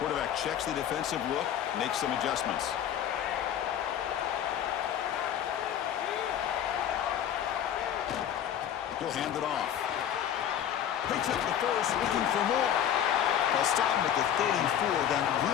checks the defensive look, makes some adjustments. He'll hand it off. Picks up the first, looking for more. They'll stop him at the 34. That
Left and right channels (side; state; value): right; quieter; 9.9 dB